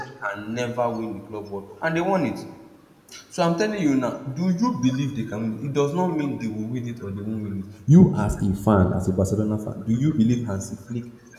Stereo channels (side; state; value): both; identical; correlation 1.00